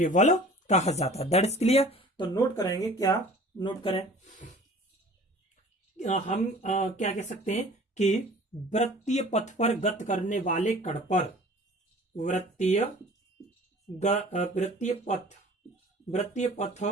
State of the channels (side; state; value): both; normal; correlation 0.46